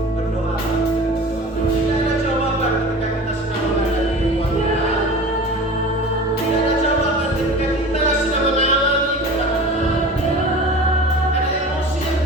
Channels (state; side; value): normal; both; correlation 0.37